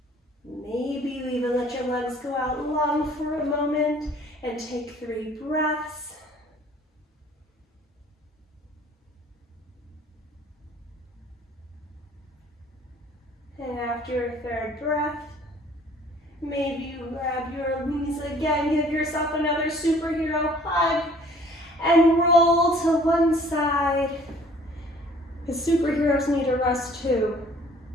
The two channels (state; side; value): normal; both; correlation 0.55